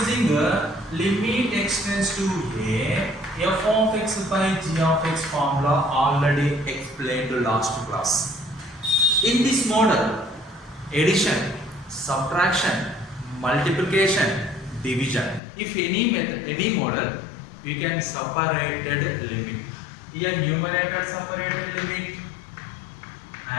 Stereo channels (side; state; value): right; drops out; at 15.4 s